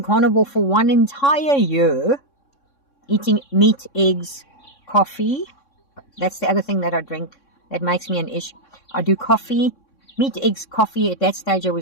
carnivore for 1 entire year, eating meat, eggs, coffee. That's the other thing that I drink that makes me an ish. I do coffee, meat, eggs, coffee. At that stage, I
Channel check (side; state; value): right; late; 3.6 ms